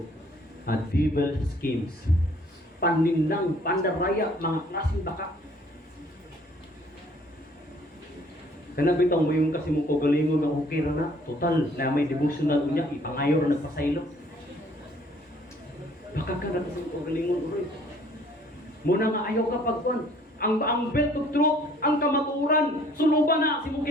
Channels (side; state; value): both; normal; correlation 0.58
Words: Devil schemes. Panindang, pandaraya, mga klaseng baka. Kana bitang mo yung kasi mong kagalingon ng okay na. Total, na may devotional niya, ipangayor na nagpasaylo. Baka ka na kasi mong kagalingon uroy. Muna nga ayaw ka pagkuhan. Ang belt of truth, ang kamaturan, suluban na si mong